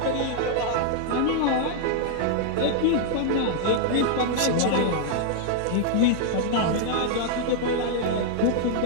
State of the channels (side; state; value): both; different; correlation -0.01